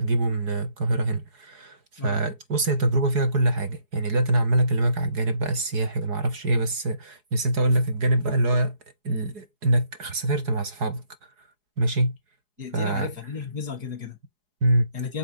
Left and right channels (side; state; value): left; late; 4.8 ms